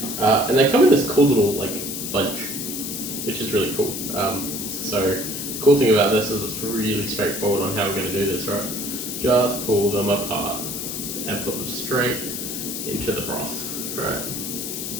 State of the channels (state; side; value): noise; left; hiss, 5 dB below the sound